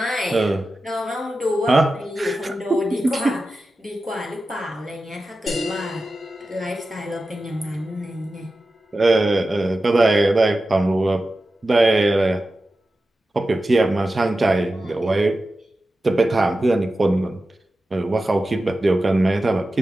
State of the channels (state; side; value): normal; both; correlation 0.93